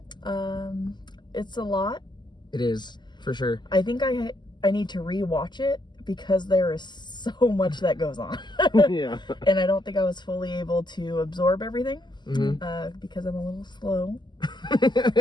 It's a lot. It is, for sure. I think I need to rewatch it because there is so much that goes on. Yeah. And I don't think I was fully able to absorb everything because I'm a little slow.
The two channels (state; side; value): late; right; 0.21 ms